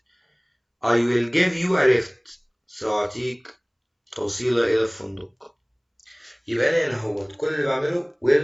I will give you a lift سأعطيك توصيلة إلى الفندق. يبقى أنا هنا كل اللي بعمله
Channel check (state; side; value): identical; both; correlation 1.00